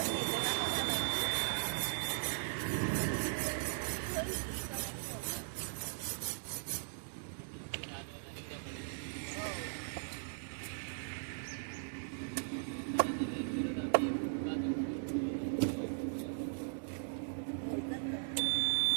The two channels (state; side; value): silent; left; digital silence